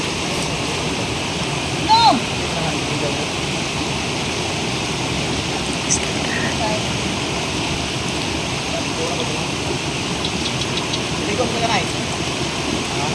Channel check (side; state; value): both; identical; correlation 1.00